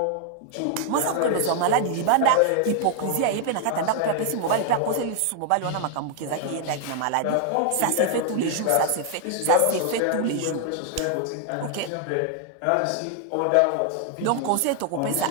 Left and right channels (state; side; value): different; both; correlation 0.00